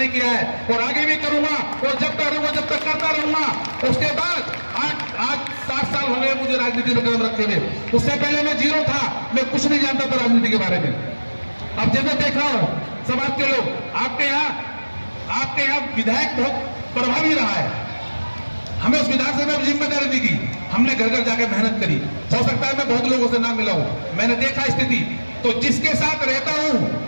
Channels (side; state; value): both; inverted; correlation -1.00